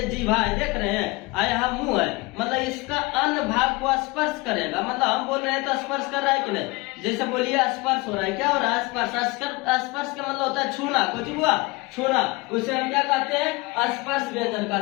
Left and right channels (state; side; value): quieter; right; 24.1 dB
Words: जीभा है, देख रहे हैं, आ यहाँ मुंह है, मतलब इसका अन्य भाग को स्पर्श करेगा। मतलब हम बोल रहे हैं तो स्पर्श कर रहा है कि नहीं। जैसे बोलिए स्पर्श हो रहा है, क्या हो रहा है, स्पर्श। स्पर्श का मतलब होता है छूना। कुछ बुआ छूना, उसे हम क्या कहते हैं, स्पर्श व्यंजन